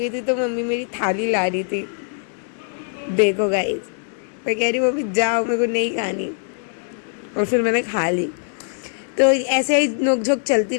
थी, तो मम्मी मेरी थाली ला रही थी। देखो गाइस, मैं कह रही हूँ मम्मी जाओ, मेरे को नहीं खानी, और फिर मैंने खा ली। तो ऐसे ही नोकझोंक चलती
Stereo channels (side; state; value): right; silent; digital silence